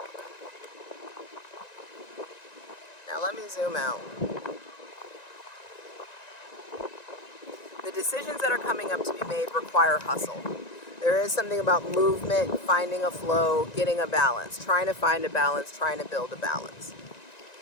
Now let me zoom out. The decisions that are coming up to be made require hustle. There is something about movement, finding a flow, getting a balance, trying to find a balance, trying to build a balance.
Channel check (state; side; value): late; right; 1.9 ms